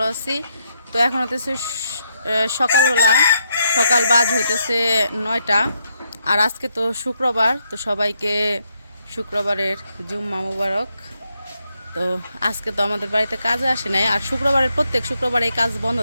আছি। তো এখন হতেছে সকালবেলা, সকাল বাজ হইতেছে 9টা। আর আজকে তো শুক্রবার, তো সবাইকে শুক্রবারের জুম্মা মুবারক। তো আজকে তো আমাদের বাড়িতে কাজে আসে নাই, আর শুক্রবারের প্রত্যেক শুক্রবার এই কাজ বন্ধ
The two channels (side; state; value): both; inverted; correlation -0.79